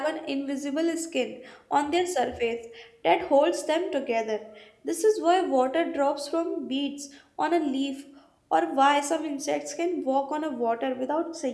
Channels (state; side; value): identical; both; correlation 1.00